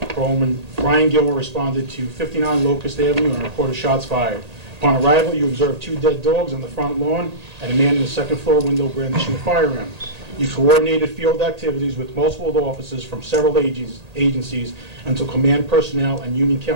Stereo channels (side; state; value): left; late; 1.8 ms